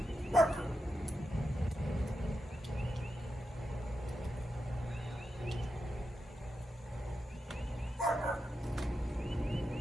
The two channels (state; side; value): normal; both; correlation 0.88